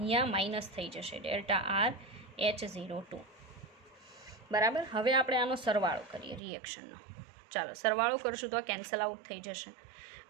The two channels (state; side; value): drops out; left; at 6.4 s